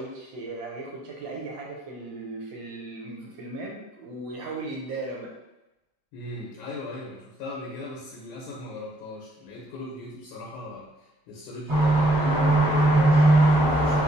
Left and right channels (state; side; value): normal; both; correlation 0.71